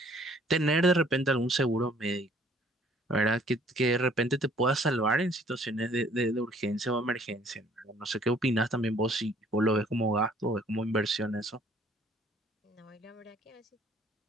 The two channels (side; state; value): both; normal; correlation 0.59